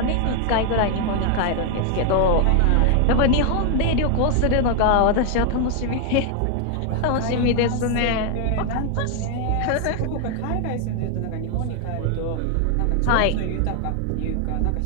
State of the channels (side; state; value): both; different; correlation 0.00